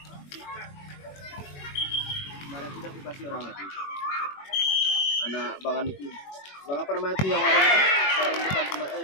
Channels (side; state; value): right; late; 21 ms